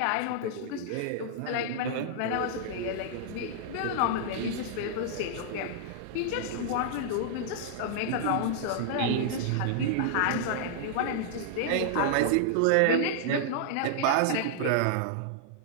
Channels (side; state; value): both; different; correlation -0.01